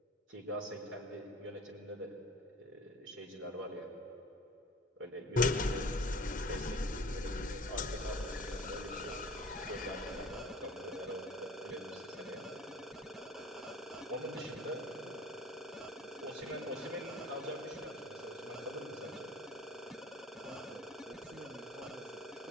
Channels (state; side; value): normal; both; correlation 0.45